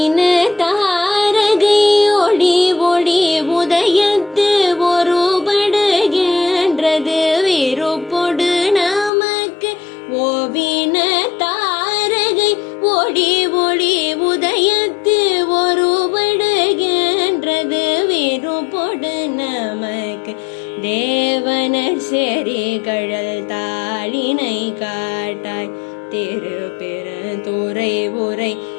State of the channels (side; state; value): right; drops out; at 9.1 s